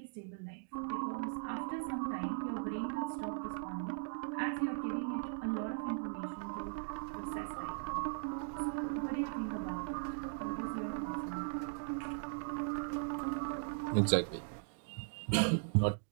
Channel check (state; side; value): silent; left; digital silence